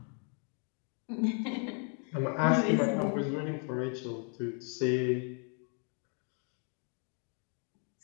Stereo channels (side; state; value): right; quieter; 37.3 dB